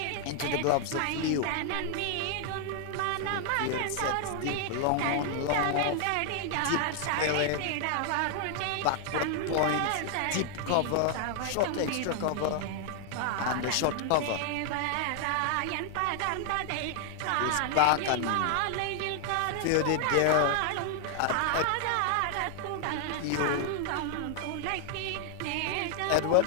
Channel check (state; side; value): different; both; correlation 0.00